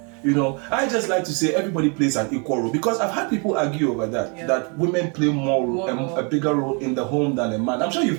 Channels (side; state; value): left; quieter; 35.1 dB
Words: I just like to say everybody plays an equal role, because I've had people argue over that women play a bigger role in the home than a man. I'm sure you've